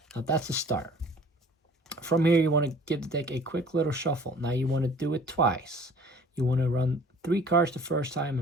Now, that's the start. From here, you want to give the deck a quick little shuffle. Now, you want to do it twice. You want to run 3 cards the first time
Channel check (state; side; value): normal; both; correlation 0.50